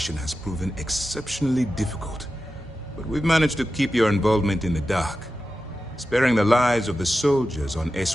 has proven exceptionally difficult. But we've managed to keep your involvement in the dark. Sparing the lives of the soldiers on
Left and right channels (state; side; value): normal; both; correlation 0.92